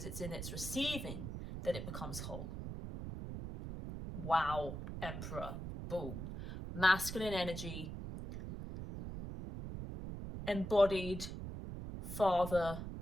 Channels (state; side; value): noise; right; rumble, 7 dB below the sound